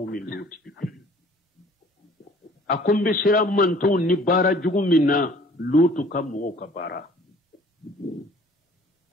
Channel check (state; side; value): normal; both; correlation 0.53